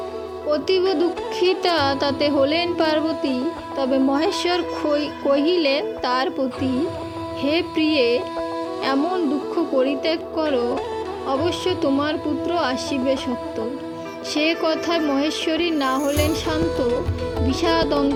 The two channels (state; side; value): identical; both; correlation 1.00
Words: অতীব দুঃখিতা তাতে হলেন পার্বতী, তবে মহেশ্বর কহিলেন তার প্রতি: হে প্রিয়ে, এমন দুঃখ পরিত্যাগ করো, অবশ্য তোমার পুত্র আসিবে সত্তর। সে কথায় মহেশ্বরী না হলেন শান্ত, বিষাদ